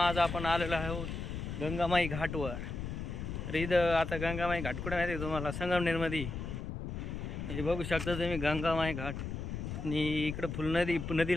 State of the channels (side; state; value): left; noise; rumble, 5 dB below the sound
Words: आपण आलेलो आहोत गंगामाई घाटवर. तर इथं आता गंगामाई घाट कुठे माहिती आहे तुम्हाला? संगमनेरमध्ये. हे बघू शकता तुम्ही गंगामाई घाट. आणि इकडं